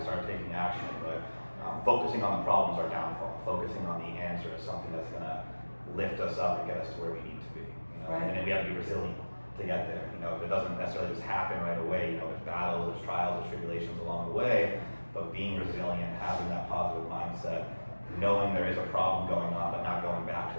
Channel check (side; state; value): both; inverted; correlation -1.00